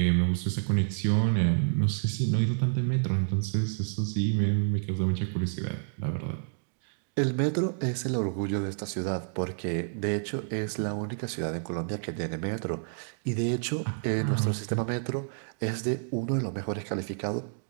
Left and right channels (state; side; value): silent; left; digital silence